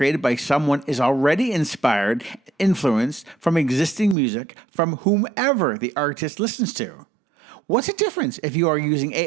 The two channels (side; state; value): left; drops out; at 4.2 s